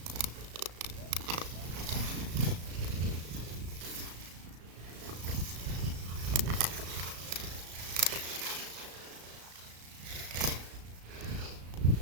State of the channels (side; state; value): left; late; 35 ms